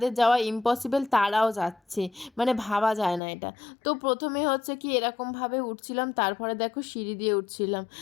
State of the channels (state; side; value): drops out; right; at 3.2 s